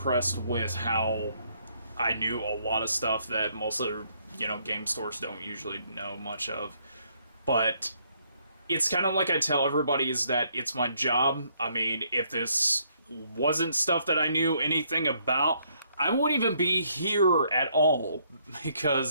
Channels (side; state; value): both; inverted; correlation -0.70